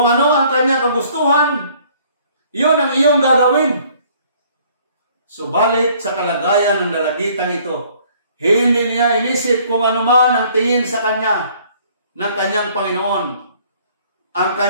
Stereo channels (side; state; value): both; inverted; correlation -0.59